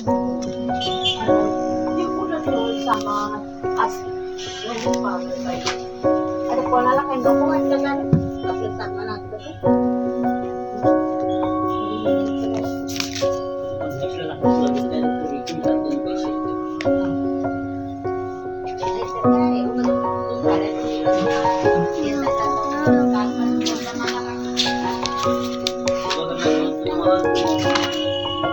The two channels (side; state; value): both; identical; correlation 1.00